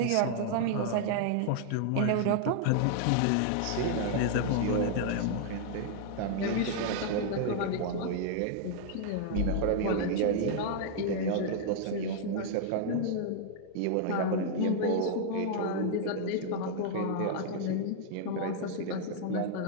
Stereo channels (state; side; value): different; both; correlation -0.01